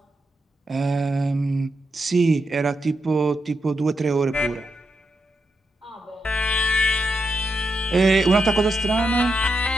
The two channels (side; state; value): both; normal; correlation 0.85